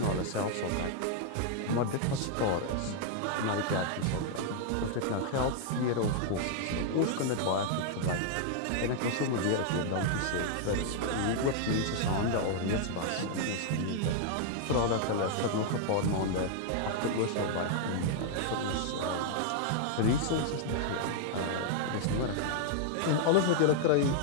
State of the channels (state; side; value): different; both; correlation 0.00